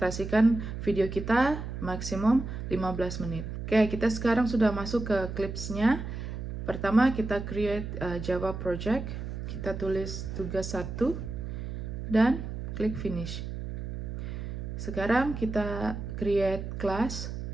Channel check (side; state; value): right; noise; hum, 6 dB below the sound